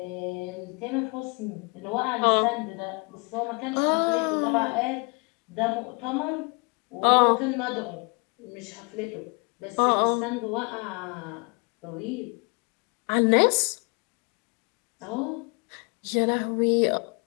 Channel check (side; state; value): right; quieter; 32.0 dB